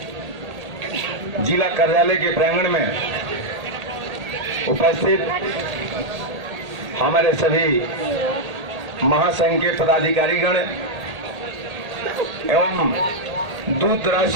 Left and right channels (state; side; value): late; left; 1.8 ms